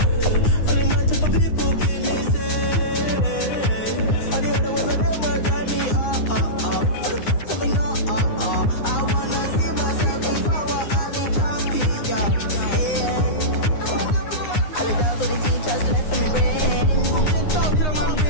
Only my type of people give me say. All the other ones of them will drive me up. Tell me no, I wanna see myself if I were Ali champion. Yeah. All the doubts of the teachers left in me brain.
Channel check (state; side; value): late; right; 9.7 ms